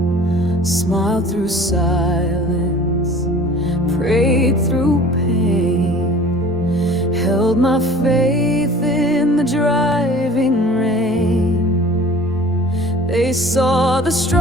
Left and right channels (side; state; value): both; normal; correlation 0.45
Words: Smiled through silence, prayed through pain, held my faith in the driving rain. They saw the